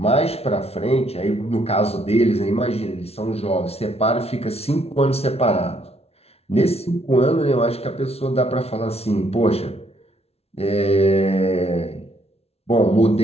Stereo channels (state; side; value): late; right; 0.30 ms